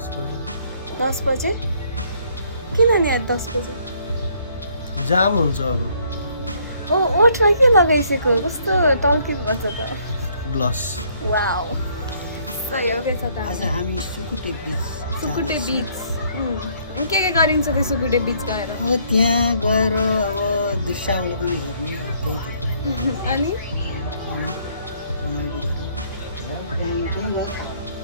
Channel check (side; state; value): both; inverted; correlation -0.65